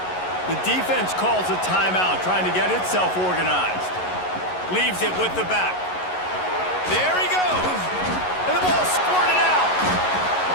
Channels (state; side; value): late; right; 11 ms